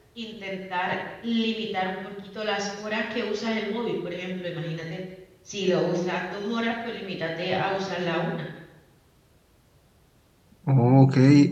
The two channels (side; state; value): both; identical; correlation 1.00